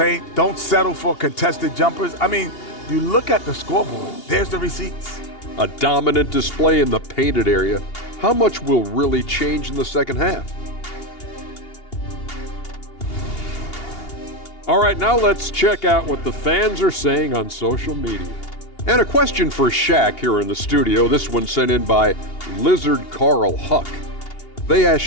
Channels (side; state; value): right; late; 2.8 ms